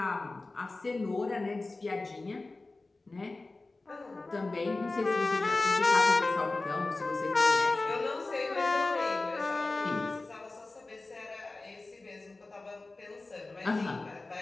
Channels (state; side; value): quieter; right; 3.3 dB